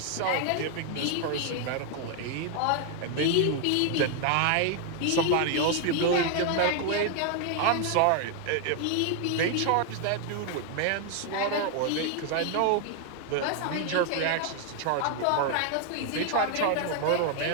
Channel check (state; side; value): different; both; correlation 0.00